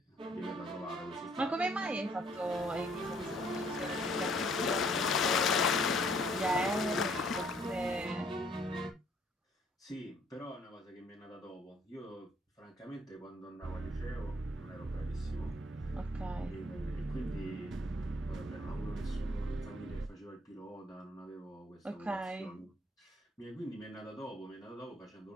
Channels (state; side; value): normal; both; correlation 0.63